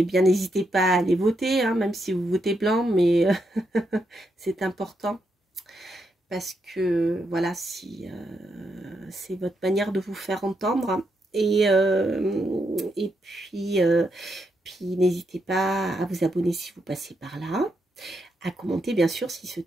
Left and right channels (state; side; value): normal; both; correlation 0.81